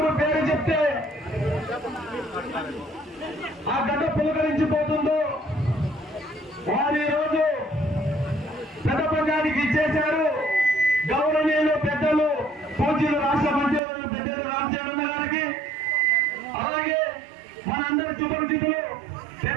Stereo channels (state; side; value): drops out; left; at 13.8 s